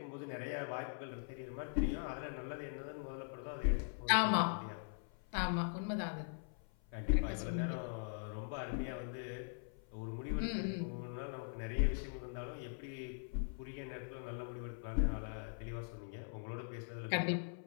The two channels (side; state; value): right; silent; 50 dB below the other